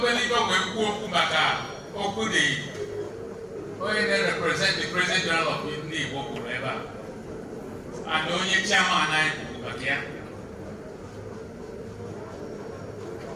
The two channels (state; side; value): identical; both; correlation 1.00